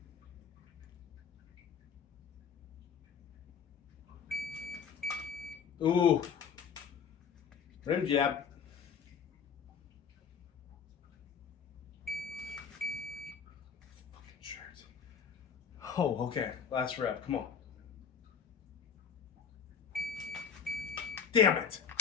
Ooh. Rim jab. Fucking shirt. Oh, okay. Last rep. Come on. Damn it.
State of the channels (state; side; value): quieter; right; 6.9 dB